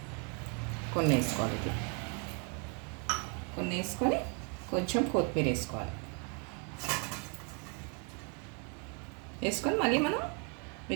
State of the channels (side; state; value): left; quieter; 36.9 dB